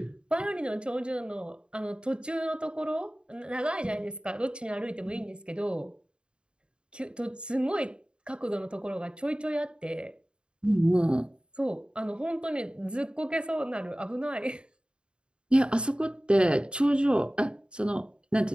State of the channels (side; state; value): left; late; 0.053 ms